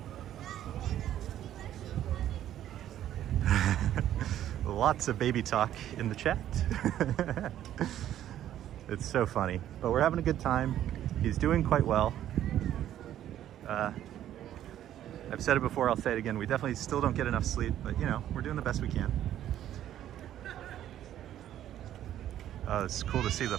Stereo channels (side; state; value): left; quieter; 11.7 dB